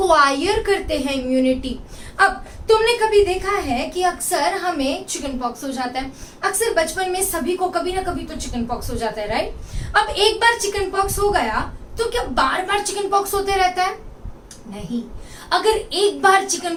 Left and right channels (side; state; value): both; identical; correlation 1.00